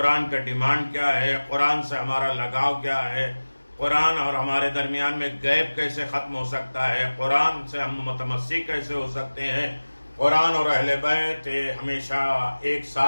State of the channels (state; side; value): inverted; both; correlation -1.00